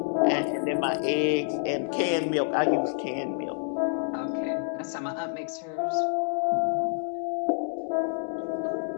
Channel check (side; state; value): right; silent; digital silence